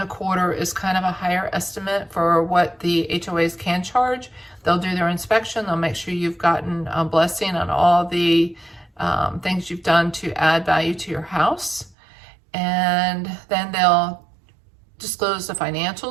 is kind of a higher estimate for what the HOAs can charge. They'll do their inspection. They'll make sure you've gotten a blessing on all the things you've done to add value to your house. And then they'll disclose the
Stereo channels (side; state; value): left; drops out; at 12.0 s